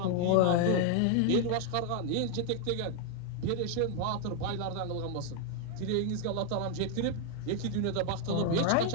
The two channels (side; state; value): both; different; correlation 0.00